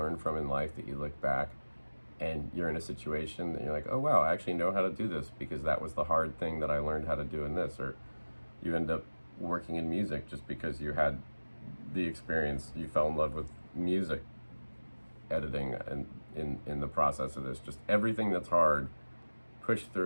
from in life that you look back and you're in a situation that you're like, oh wow, I actually know how to do this because that was the hard thing that I learned how to do in this. Or you end up working in music just because you had the experience, you fell in love with music editing and in the process of this. Just everything that's hard, push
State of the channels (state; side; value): inverted; both; correlation -1.00